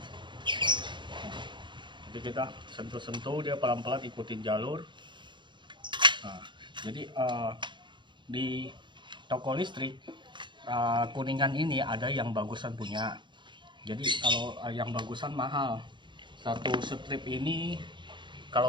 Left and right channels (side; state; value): left; late; 0.23 ms